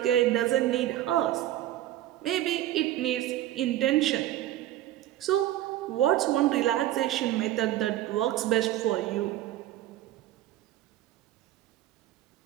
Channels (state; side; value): quieter; left; 13.6 dB